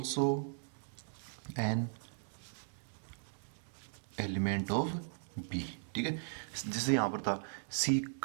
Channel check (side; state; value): left; silent; digital silence